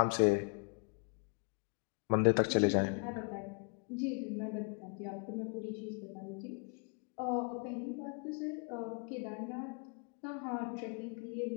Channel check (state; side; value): quieter; right; 38.3 dB